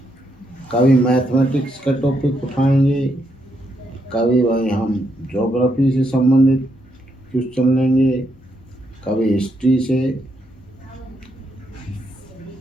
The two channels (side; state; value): both; normal; correlation 0.78